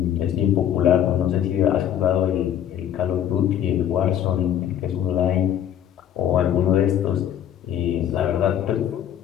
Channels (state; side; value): quieter; right; 10.2 dB